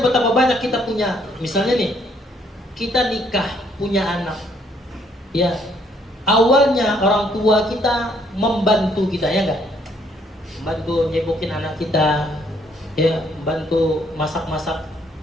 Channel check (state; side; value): normal; both; correlation 0.67